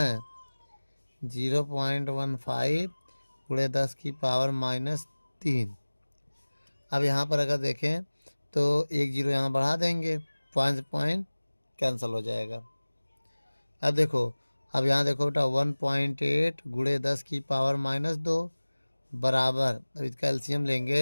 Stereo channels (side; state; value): both; inverted; correlation -1.00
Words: 0.15 गुणे 10 की पावर -3। अब यहाँ पर अगर देखें तो एक जीरो यहाँ बढ़ा देंगे, पॉइंट पॉइंट कैंसिल हो जाएगा। अब देखो, अब यहाँ देखो बेटा 1.8 गुणे 10 की पावर -2 बराबर, अब इसका एलसीएम